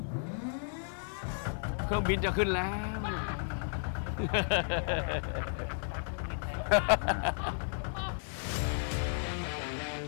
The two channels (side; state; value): right; silent; digital silence